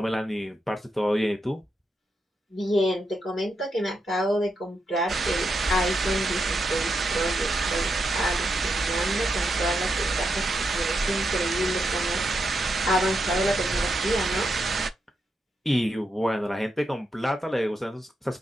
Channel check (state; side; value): normal; both; correlation 0.84